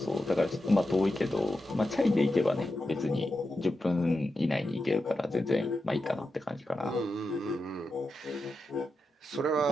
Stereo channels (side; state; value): both; normal; correlation 0.89